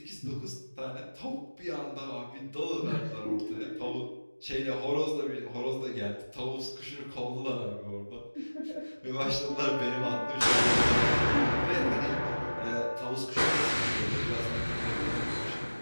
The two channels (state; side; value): inverted; both; correlation -1.00